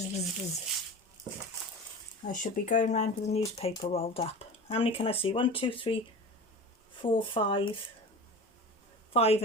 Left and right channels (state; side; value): normal; both; correlation 0.33